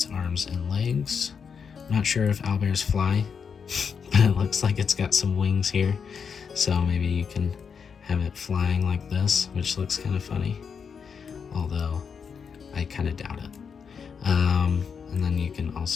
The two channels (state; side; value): quieter; right; 6.4 dB